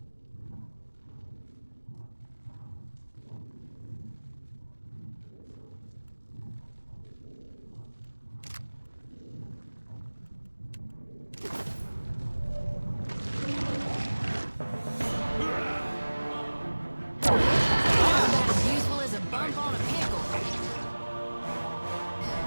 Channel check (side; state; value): both; inverted; correlation -1.00